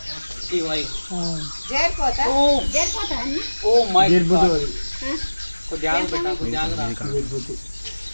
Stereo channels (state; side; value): inverted; both; correlation -1.00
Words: ఓ మై గాడ్, కొద్దిగా పెట్టా, కొద్దిగా